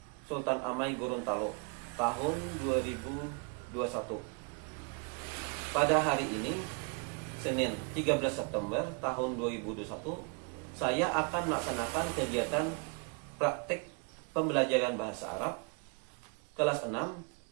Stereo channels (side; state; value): left; quieter; 35.4 dB